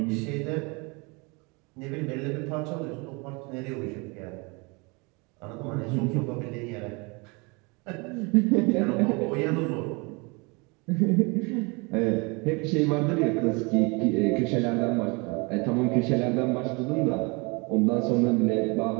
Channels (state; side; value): quieter; left; 28.9 dB